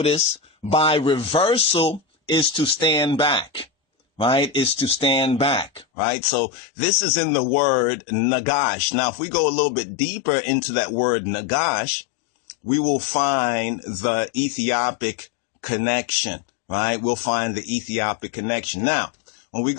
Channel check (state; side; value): drops out; right; at 5.9 s